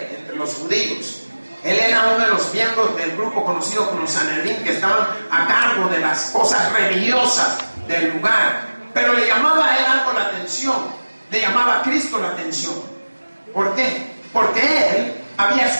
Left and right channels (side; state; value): both; inverted; correlation -1.00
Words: entre los judíos. Él era uno de los miembros del grupo conocido como Sanedrín, que estaban a cargo de las cosas religiosas del lugar. Pero le llamaba a él algo la atención, le llamaba a Cristo la atención. ¿Por qué? Porque él había